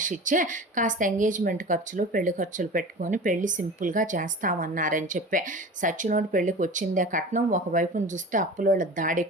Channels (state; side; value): normal; both; correlation 0.35